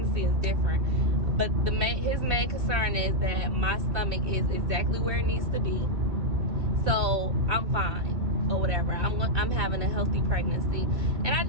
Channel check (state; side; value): late; left; 2.6 ms